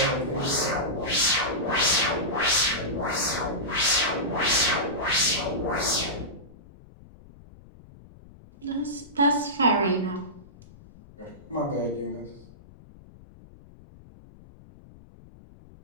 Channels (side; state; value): left; noise; rumble, 22 dB below the sound